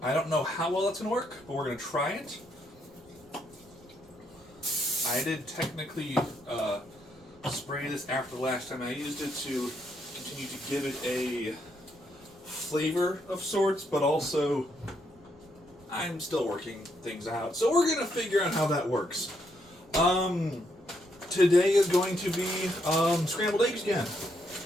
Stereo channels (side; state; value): right; noise; rumble, 26 dB below the sound